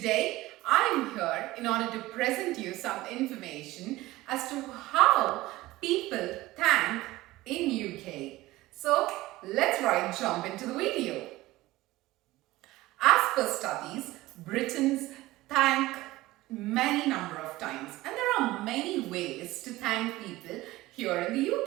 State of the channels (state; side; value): quieter; left; 18.1 dB